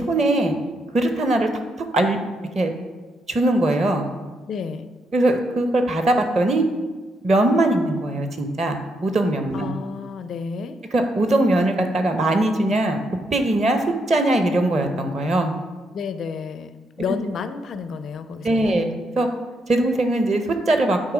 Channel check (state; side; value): normal; both; correlation 0.78